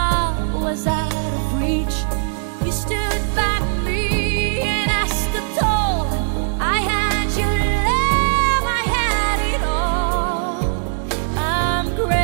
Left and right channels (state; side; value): silent; left; digital silence